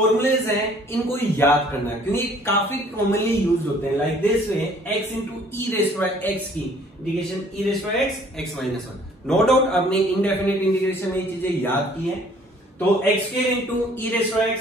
हैं, इनको याद करना है क्योंकि काफी कॉमनली यूज होते हैं। Like this way, x into e raised by एक्स की integration e raised by x, x minus 1। No doubt आपने इंडेफिनिट इंटीग्रेशन में ये चीजें याद की हैं। तो x square into e raised by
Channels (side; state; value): both; normal; correlation 0.57